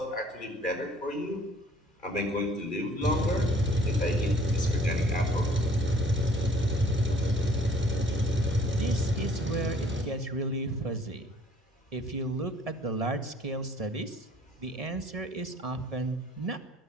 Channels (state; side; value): normal; both; correlation 0.58